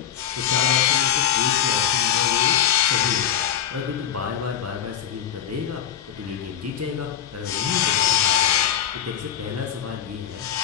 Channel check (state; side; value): quieter; right; 10.0 dB